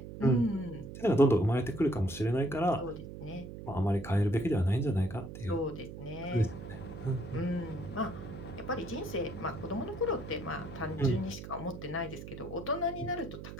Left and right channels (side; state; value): right; noise; hum, 11 dB below the sound